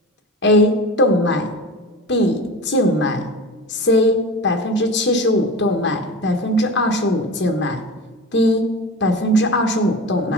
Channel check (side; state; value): both; normal; correlation 0.31